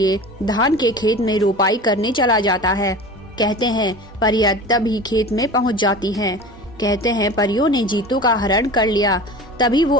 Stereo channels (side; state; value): both; normal; correlation 0.36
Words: धान के खेत में रोपाई करने चला जाता है। कहते हैं परिया तभी खेत में पहुँच जाती है। कहते हैं परियों ने जीतू का हरण कर लिया। तभी वो